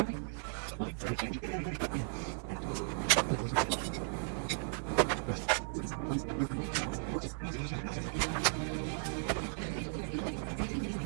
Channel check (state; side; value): silent; left; 54 dB below the other